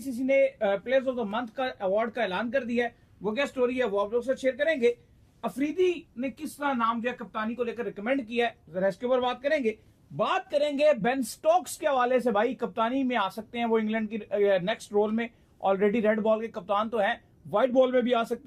ने प्लेयर्स ऑफ द मंथ का अवार्ड का ऐलान कर दिया है, वो क्या स्टोरी है वो आप लोग से शेयर करेंगे। अफरीदी ने किस तरह नाम जो है कप्तानी को लेकर रिकमेंड किया है, जरा इसके ऊपर बात करेंगे। बात करेंगे बेन स्टोक्स के हवाले से, भाई कप्तानी में आ सकते हैं वो इंग्लैंड की नेक्स्ट रोल में। ऑलरेडी रेड बॉल के कप्तान तो हैं, व्हाइट बॉल में भी आ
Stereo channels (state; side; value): identical; both; correlation 1.00